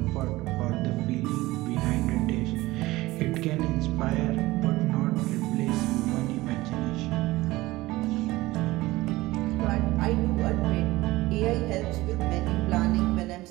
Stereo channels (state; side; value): quieter; left; 18.9 dB